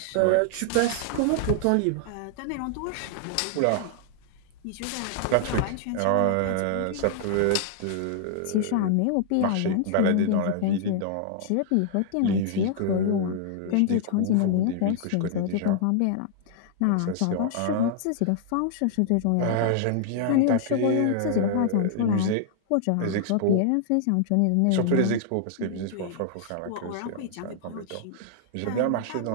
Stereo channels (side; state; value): both; different; correlation -0.01